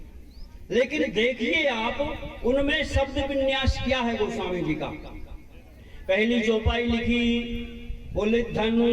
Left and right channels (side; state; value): both; identical; correlation 1.00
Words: लेकिन देखिए आप उनमें शब्द विन्यास क्या है गोस्वामी जी का। पहली चौपाई लिखी, बोले